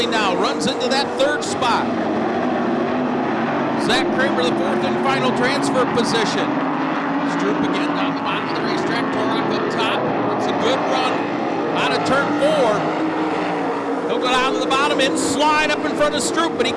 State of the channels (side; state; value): both; identical; correlation 1.00